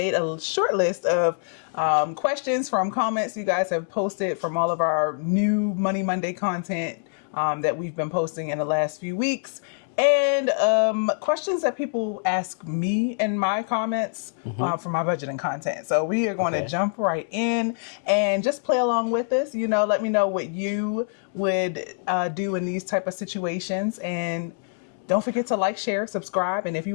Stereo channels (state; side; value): silent; right; digital silence